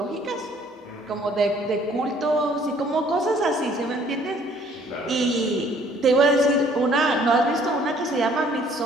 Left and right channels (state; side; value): normal; both; correlation 0.59